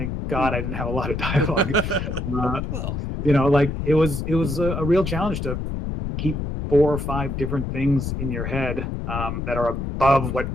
God I didn't have a lot of dialogue. It was a real challenge to keep 4 or 5 different things in your head that are above what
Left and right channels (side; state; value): left; noise; rumble, 3 dB below the sound